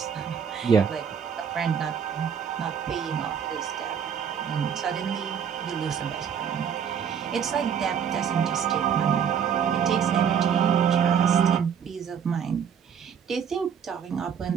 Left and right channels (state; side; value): quieter; left; 7.6 dB